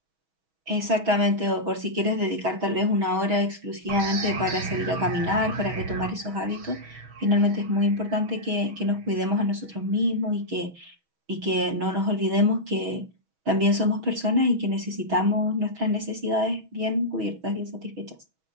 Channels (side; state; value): left; late; 6.2 ms